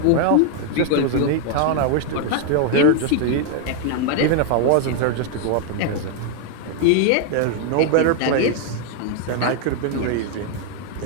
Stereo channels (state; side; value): different; both; correlation 0.00